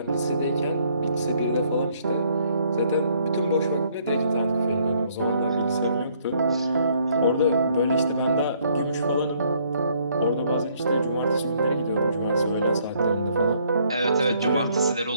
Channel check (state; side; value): inverted; both; correlation -0.66